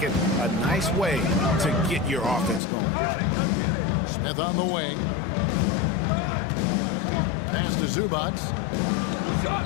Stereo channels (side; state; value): right; drops out; at 2.6 s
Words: A nice way to get your offense going. Smith on the wing. Pass to Zubac.